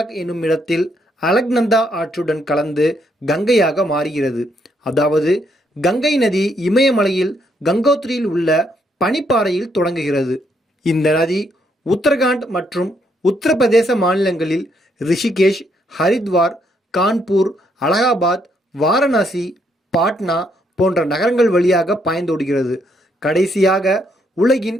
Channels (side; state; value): both; normal; correlation 0.73